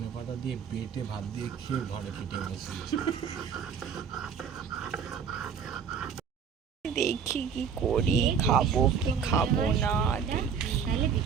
পাতা দিয়ে বেটে ভাত দিয়ে খেয়ে ঘরে পিঠে বসিয়েছে। দেখি কি করি, খাবো কি খাবো না। তাহলে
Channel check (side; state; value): left; quieter; 6.7 dB